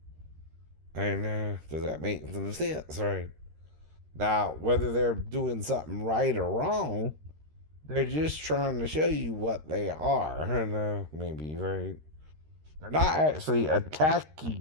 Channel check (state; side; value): late; left; 13 ms